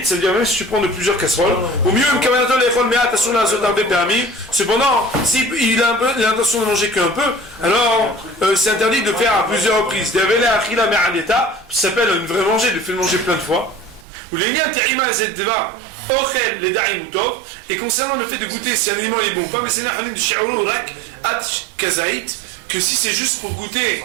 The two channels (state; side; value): drops out; left; at 14.1 s